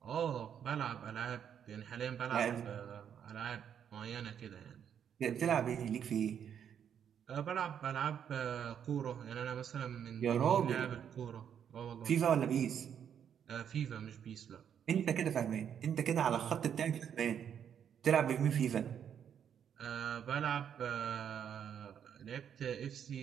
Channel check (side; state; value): left; quieter; 8.5 dB